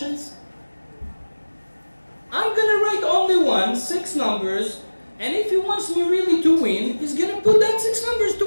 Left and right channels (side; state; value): both; inverted; correlation -1.00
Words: I'm going to write only 6 numbers, and if he wants me really to win, he's going to put that 6 numbers to